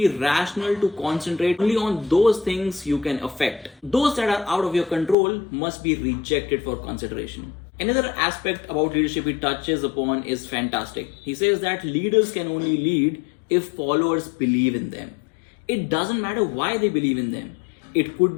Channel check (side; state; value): right; drops out; at 5.2 s